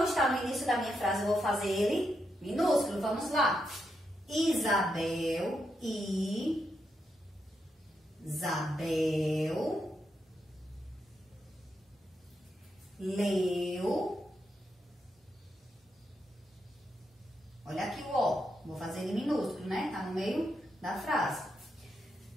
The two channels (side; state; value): both; normal; correlation 0.83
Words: está no início da minha frase, eu vou fazer ele minúsculo. Vamos lá. Isabel, leu. Olha aqui o O. Vou fazer ele minúsculo, né? Tá no meio da frase.